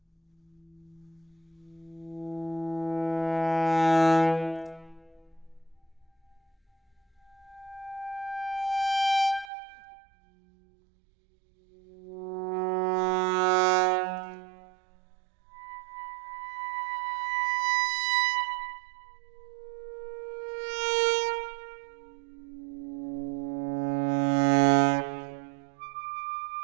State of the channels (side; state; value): left; drops out; at 9.5 s